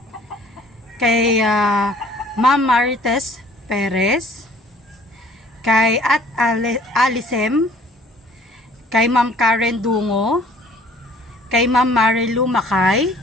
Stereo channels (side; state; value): both; normal; correlation 0.55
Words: kay Ma'am Marites Perez, kay at Alisem, kay Ma'am Karen Dungo, kay Ma'am Marilu Makay,